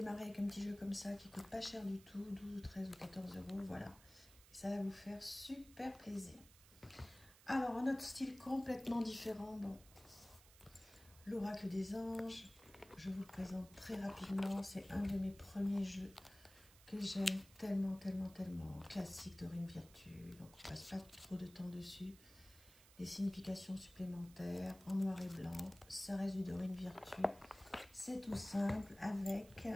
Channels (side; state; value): right; noise; hiss, 22 dB below the sound